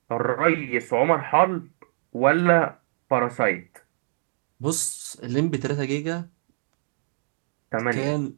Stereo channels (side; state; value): left; silent; digital silence